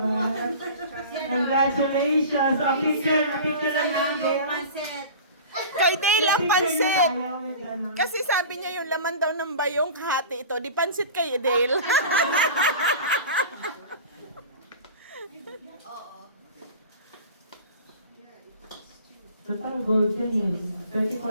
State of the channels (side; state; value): both; inverted; correlation -0.37